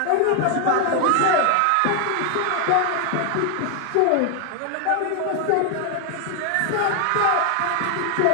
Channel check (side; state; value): both; different; correlation 0.00